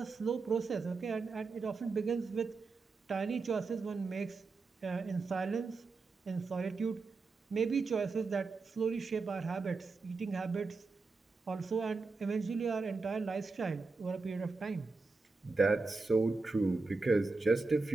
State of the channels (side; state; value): left; quieter; 4.0 dB